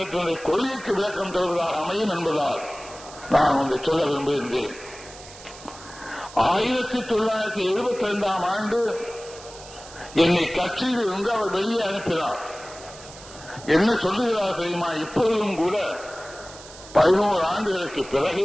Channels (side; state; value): right; noise; hiss, 17 dB below the sound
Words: கொள்கைக்கு விளக்கம் தருவதாக அமையும் என்பதால் நான் ஒன்றை சொல்ல விரும்புகின்றேன். 1972ஆம் ஆண்டு என்னை கட்சியில் இருந்து அவர் வெளியே அனுப்பினார். என்ன சொல்லுகிறார் தெரியுமா? இப்பொழுதும் கூட 11 ஆண்டுகளுக்கு